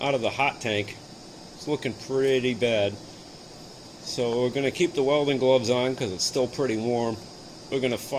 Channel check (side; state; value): both; identical; correlation 1.00